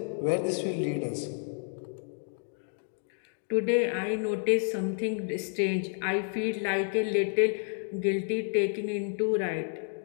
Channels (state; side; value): silent; right; 58 dB below the other